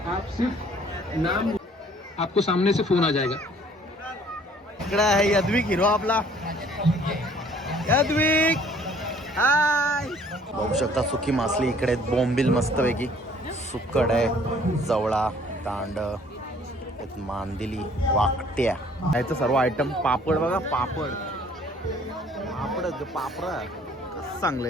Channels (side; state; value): both; normal; correlation 0.57